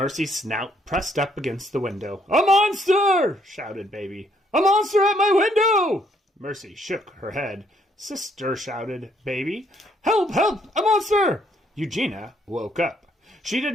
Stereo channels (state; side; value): normal; both; correlation 0.69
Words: snout pressed up against the window. A monster! Shouted Baby. A monster at my window! Mercy shook her head. Sister, shouted Baby. Help! Help! A monster! Eugenia woke up. She